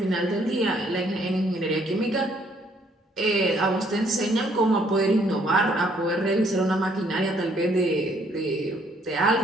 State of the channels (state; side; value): normal; both; correlation 0.66